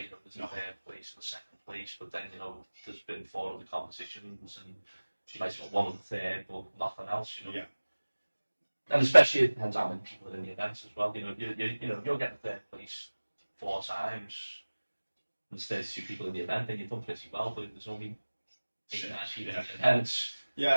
you know, there's a third place and a second place, but then, you know, there's been 4 other competitions and you might have got one of the third, but nothing else, you know. Yeah. And especially it depends how many people are in the events as well. You know, you're getting third place 4 times. There's 32 people in the event, then you've done pretty well, but if there's only 8 or 9 people in the event,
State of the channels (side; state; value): both; inverted; correlation -1.00